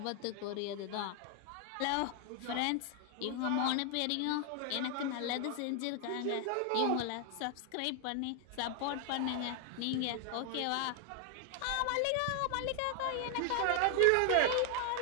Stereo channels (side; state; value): both; different; correlation 0.00